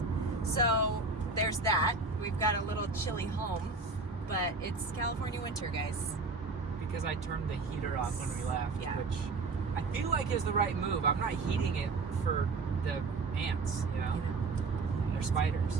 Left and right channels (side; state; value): left; quieter; 3.8 dB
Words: So there's that. We've got a little chilly home, but it's California winter, guys. Because I turned the heater off when we left, Yeah. which I feel like is the right move. I'm not heating it for the ants, you know? They're